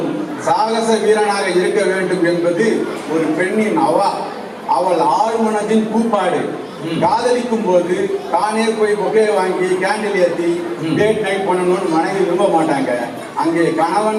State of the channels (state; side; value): identical; both; correlation 1.00